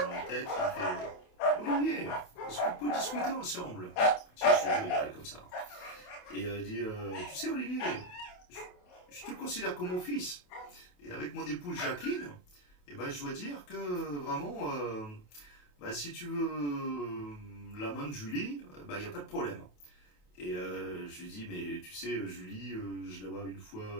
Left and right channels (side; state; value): right; late; 28 ms